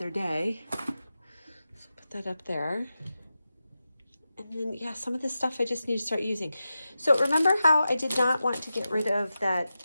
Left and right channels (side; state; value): both; inverted; correlation -0.92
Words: day. So put that up there. And then, yeah, some of this stuff I just need to start using. So remember how I did not want to get rid of